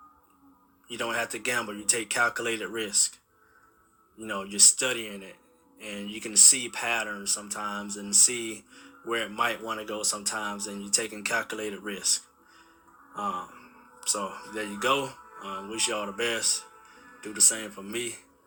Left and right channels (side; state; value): both; identical; correlation 1.00